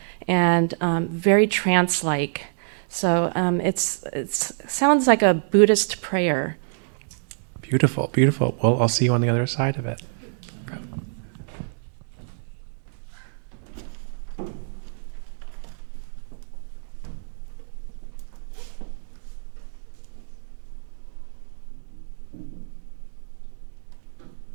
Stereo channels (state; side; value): silent; left; 61 dB below the other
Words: and very trance-like. So it sounds like a Buddhist prayer. Beautiful, beautiful. Well, I'll see you on the other side of it.